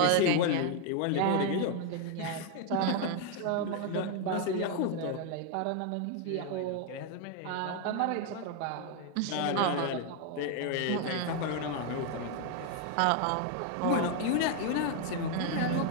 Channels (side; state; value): both; different; correlation 0.00